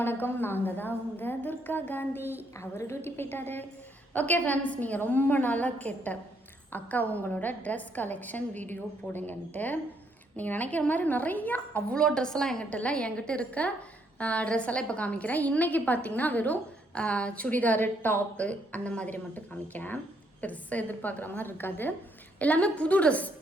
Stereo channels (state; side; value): normal; both; correlation 0.72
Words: வணக்கம். நாங்கள் தான் உங்கள் துர்கா காந்தி. அவர் டியூட்டி போயிட்டாரு. ஓகே ஃப்ரெண்ட்ஸ், நீங்கள் ரொம்ப நாளாக கேட்ட அக்கா உங்களோட ட்ரெஸ் கலெக்ஷன் வீடியோ போடுங்கன்ட்டு. நீங்கள் நினைக்கிற மாதிரி நிறையா அவ்வளோ ட்ரெஸ்ஸெல்லாம் என்கிட்ட இல்லை. என்கிட்ட இருக்க ட்ரெஸ் எல்லாம் இப்போ காமிக்கிறேன். இன்றைக்கி பார்த்தீங்கன்னா வெறும் சுடிதாரு, டாப்பு அந்த மாதிரி மட்டும் காமிக்கிறேன். பெருசாக எதிர்பார்க்குற மாதிரி இருக்காது. எல்லாமே புது ட்ரெஸ்,